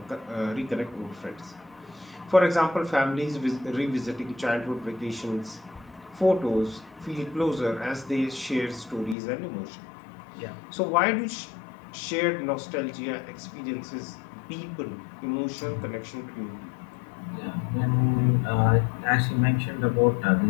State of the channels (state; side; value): drops out; right; at 9.2 s